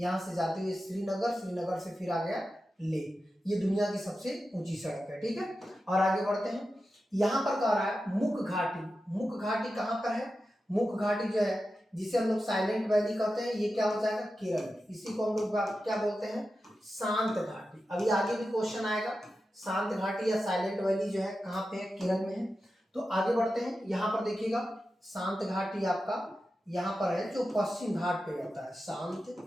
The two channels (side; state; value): both; normal; correlation 0.91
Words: से जाते हुए श्रीनगर, श्रीनगर से फिर आ गया लेह। ये दुनिया की सबसे ऊंची सड़क है। ठीक है, और आगे बढ़ते हैं। यहाँ पर कह रहा है मुख घाटी। मुख घाटी कहाँ पर है, मुख घाटी जो है जिसे हम लोग साइलेंट वैली कहते हैं, ये क्या हो जाएगा, केरल में। इसी को हम लोग क्या बोलते हैं, शांत घाटी। अभी आगे भी क्वेश्चन आएगा, शांत घाटी या साइलेंट वैली जो है कहाँ पे है, केरल में है। तो आगे बढ़ते हैं। यहाँ पर देखिएगा शांत घाटी आपका यहाँ पर है, जो पश्चिम घाट पे आता है। शांत